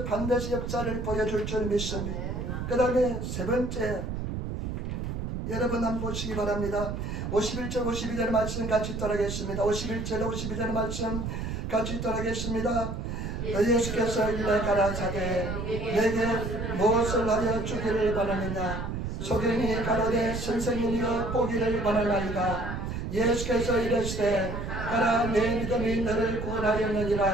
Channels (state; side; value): noise; right; rumble, 4 dB below the sound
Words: 반드시 역사를 보여줄 줄 믿습니다. 그 다음에 세 번째 여러분 한번 보시기 바랍니다. 51절 52절 말씀 같이 따라하겠습니다. 51절 52절 말씀 같이 따라하겠습니다. 예수께서 일러 가라사대 내게 무엇을 하여 주기를 원하느냐 소경이 가로되 선생님이여 보기를 원하나이다. 예수께서 이르시되 가라 내 믿음이 너를 구원하였느니라